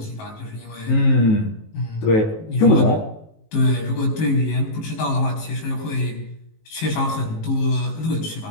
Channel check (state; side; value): late; right; 19 ms